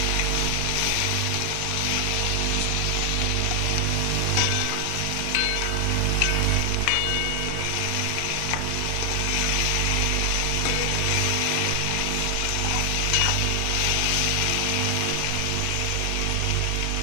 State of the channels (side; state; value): both; different; correlation 0.00